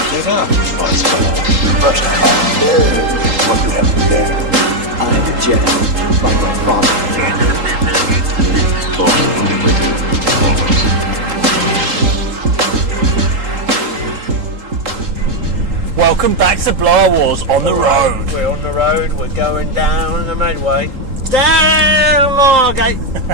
it up, Buzzsaw. But what you have there. I am a Jedi, like my father. Welcome back to Blower Wars on the road. We're on the road, we're going down the Medway. Down Margate!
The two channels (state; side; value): late; left; 3.8 ms